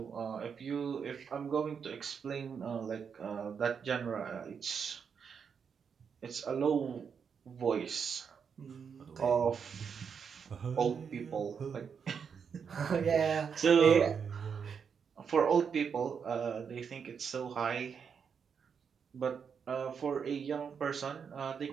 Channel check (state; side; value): quieter; left; 6.7 dB